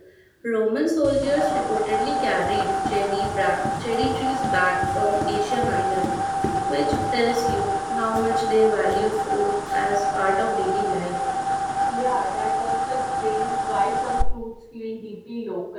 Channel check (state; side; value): identical; both; correlation 1.00